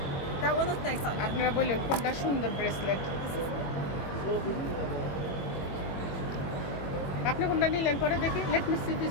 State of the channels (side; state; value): right; late; 22 ms